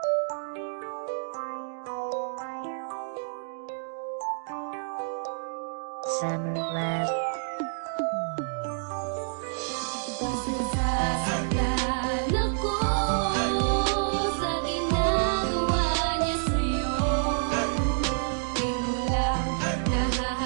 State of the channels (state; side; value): silent; left; digital silence